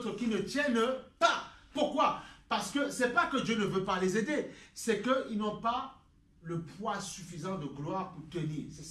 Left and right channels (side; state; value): both; identical; correlation 1.00